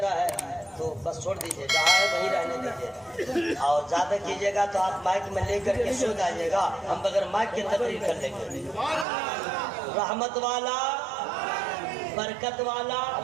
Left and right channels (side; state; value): left; drops out; at 9.1 s